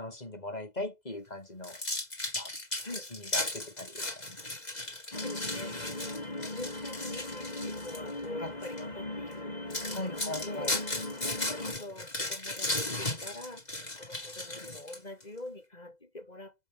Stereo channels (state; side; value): late; right; 2.0 ms